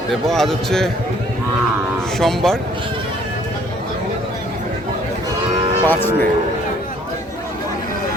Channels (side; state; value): both; normal; correlation 0.59